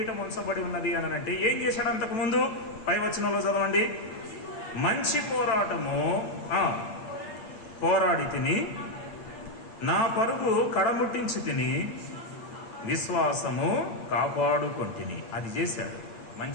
ఉంచబడి ఉన్నది అని అంటే ఏం చేశాడు? అంతకు ముందు పై వచనంలో చదవండి. మంచి పోరాటము పోరాడి తిని, నా పరుగు కడముట్టించి తిని, విశ్వాసము కాపాడుకొంటిని. అది చేశాడు.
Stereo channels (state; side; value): late; right; 8.6 ms